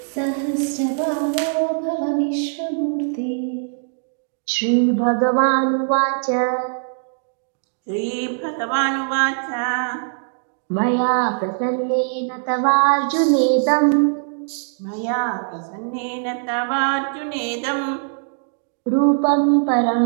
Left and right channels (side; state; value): left; silent; digital silence